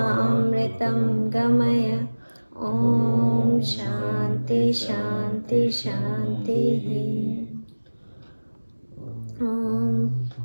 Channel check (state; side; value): inverted; both; correlation -1.00